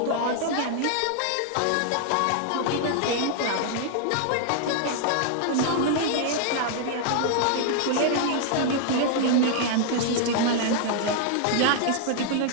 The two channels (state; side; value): different; both; correlation 0.00